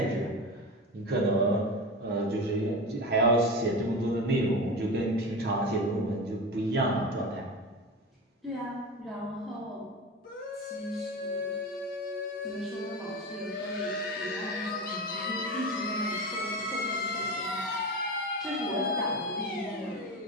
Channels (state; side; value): normal; both; correlation 0.26